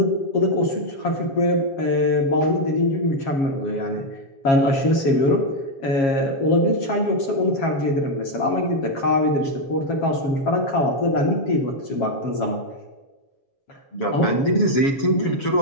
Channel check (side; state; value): right; late; 7.3 ms